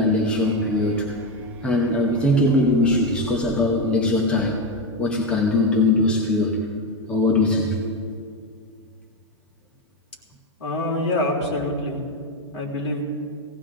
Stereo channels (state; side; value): normal; both; correlation 0.12